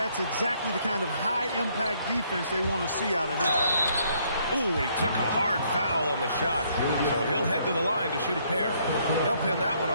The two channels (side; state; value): both; inverted; correlation -0.68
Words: exactly the kind of high-impact defense they want to see out of him. Ooh, and he took a hard foul on the shot. So he'll head to the line to shoot a pair. They'll pin that one